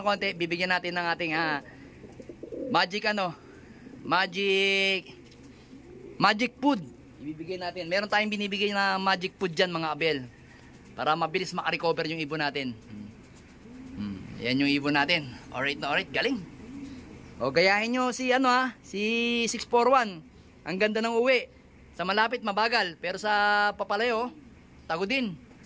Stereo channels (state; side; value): identical; both; correlation 1.00